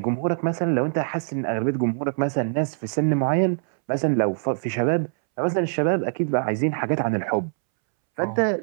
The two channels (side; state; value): left; silent; 63 dB below the other